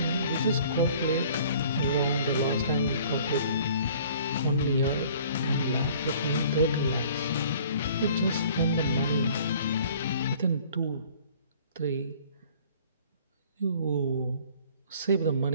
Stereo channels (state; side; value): inverted; both; correlation -0.52